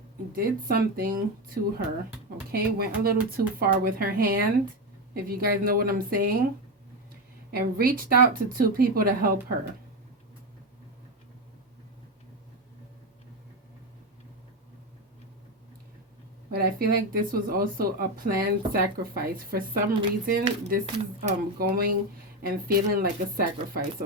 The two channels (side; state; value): both; normal; correlation 0.13